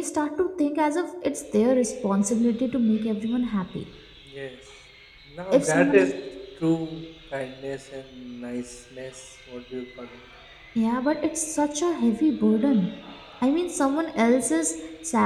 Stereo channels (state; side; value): identical; both; correlation 1.00